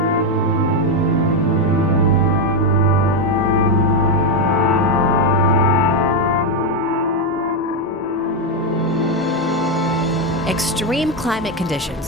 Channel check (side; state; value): both; normal; correlation 0.06